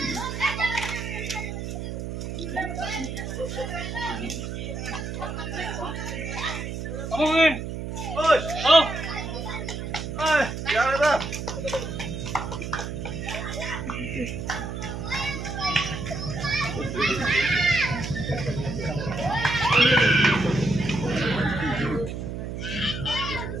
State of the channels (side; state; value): right; noise; hum, 5 dB below the sound